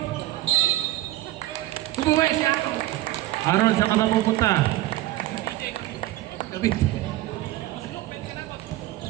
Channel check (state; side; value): quieter; left; 16.3 dB